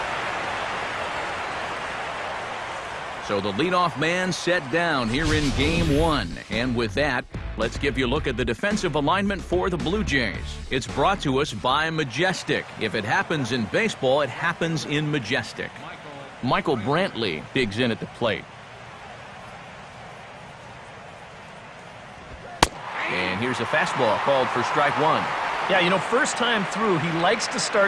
So the leadoff man set down here in game one. And with that, let's give you a look at the defensive alignment for the Blue Jays. It's brought to us by Majestic. If it happens in baseball, it happens in Majestic. Michael Brantley digs in at the plate. And here's a fastball called for strike one. Yeah, you know, first time through, he likes to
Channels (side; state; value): both; identical; correlation 1.00